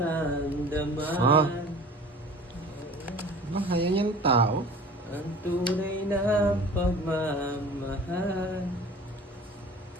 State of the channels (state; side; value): normal; both; correlation 0.42